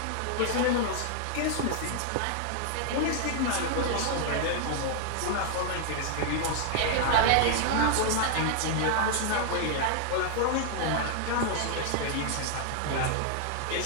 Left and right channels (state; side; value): different; both; correlation 0.00